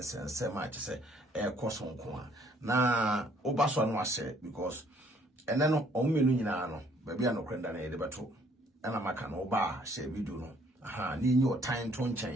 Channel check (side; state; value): both; normal; correlation 0.62